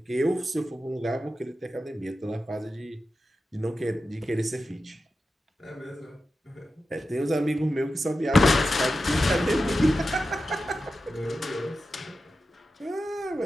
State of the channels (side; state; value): both; normal; correlation 0.92